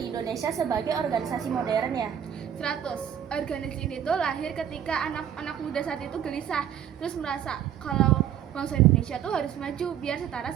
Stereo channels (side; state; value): left; quieter; 9.5 dB